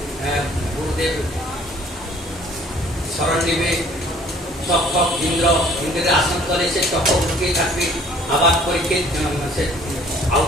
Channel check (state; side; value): normal; both; correlation 0.55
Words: গুরুদেব স্মরণ নিবে। তক্ষক ইন্দ্রের আসন তলে সে তক্ষক লুকিয়ে থাকবে, আবার পরীক্ষিত